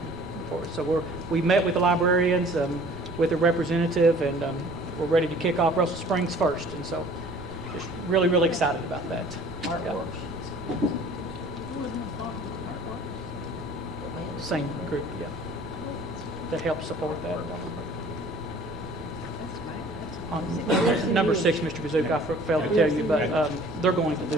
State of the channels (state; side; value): noise; right; rumble, 20 dB below the sound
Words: for us. So we met with the librarians, with a representative, and we're ready to kick off Russell Springs first. And so just really, really excited about that. Artworks. Same group, yeah. That helps support that. On number 6, Mr. Kazsuk, I failed to tell you, but they're going to